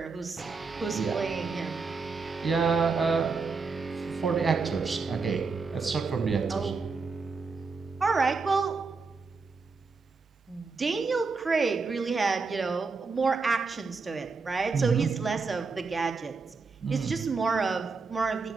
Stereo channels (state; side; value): quieter; left; 4.5 dB